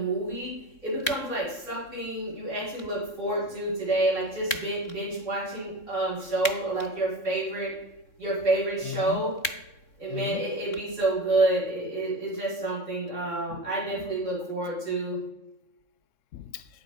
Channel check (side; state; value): right; late; 3.6 ms